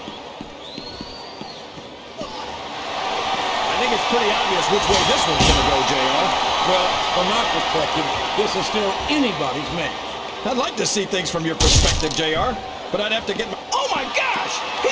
I think it's pretty obvious which way this one's gonna go, JR. Well, from my perspective, this is still anybody's match. I'd like to see things from your perspective, JR, but I'd have to get my... Oh my gosh!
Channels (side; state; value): both; identical; correlation 1.00